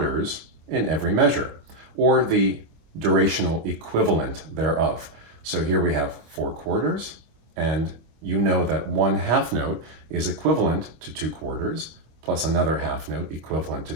in every measure, or the durational equivalent thereof. So here we have 4 quarters, and you know that 1 half note is equivalent to 2 quarters, plus another half note equivalent to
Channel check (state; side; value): late; left; 25 ms